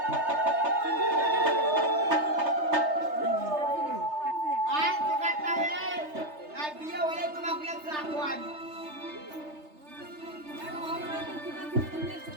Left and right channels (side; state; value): left; late; 3.3 ms